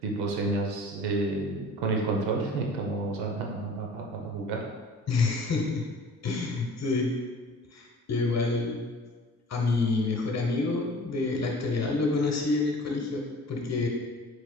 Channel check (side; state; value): both; normal; correlation 0.45